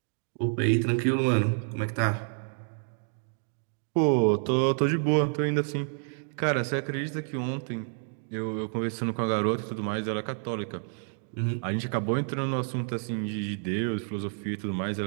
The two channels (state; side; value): silent; left; 57 dB below the other